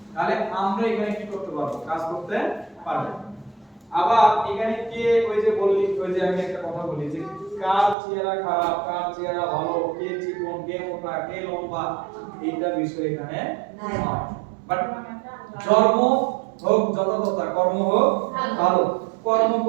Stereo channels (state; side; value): drops out; left; at 8.0 s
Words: তাহলে আমরা এখানে কি করতে পারবো? কাজ করতে পারবো। আবার এখানে কে, ওই যে বললি, ওই যে আমি একটা কথা বলি যে কার চেহারা খারাপ, কার চেহারা ভালো, কে চিকন, কে মোটা, কে লম্বা, এইটা বিষয় এখানে নয়। বাট জন্ম হোক যথাযথ, কর্ম হোক ভালো। কর্ম